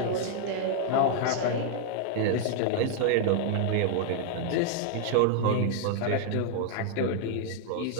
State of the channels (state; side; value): different; both; correlation 0.00